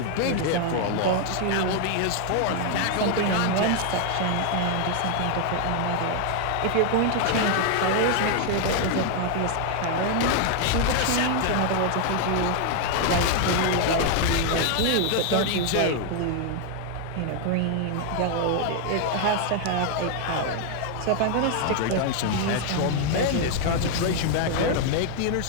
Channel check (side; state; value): both; different; correlation 0.00